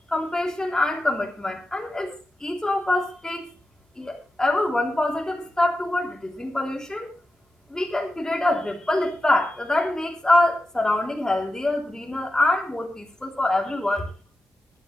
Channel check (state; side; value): normal; both; correlation 0.91